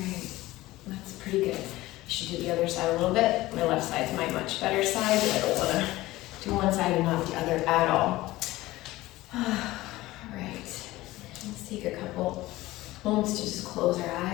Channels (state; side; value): quieter; right; 17.9 dB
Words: that's pretty good. I should do the other side a little bit. My left side's my much better side, but I don't want to do one side and not the other at all. All right, let's take a couple moments to just close our